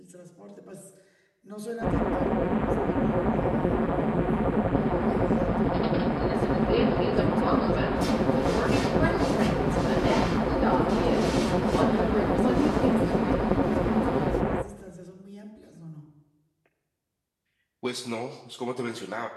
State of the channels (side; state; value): both; identical; correlation 1.00